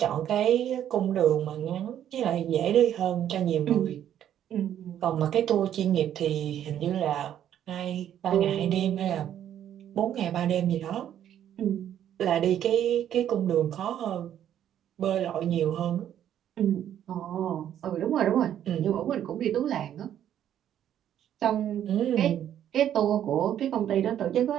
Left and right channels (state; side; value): quieter; left; 10.5 dB